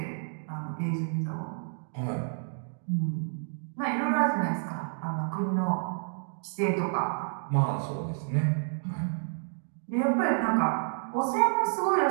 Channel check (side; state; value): left; silent; digital silence